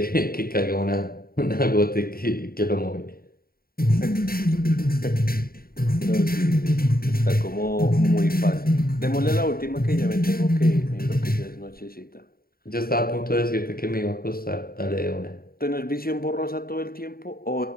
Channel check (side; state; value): right; late; 0.43 ms